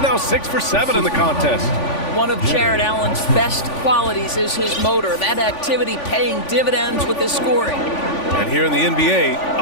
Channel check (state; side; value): late; right; 3.5 ms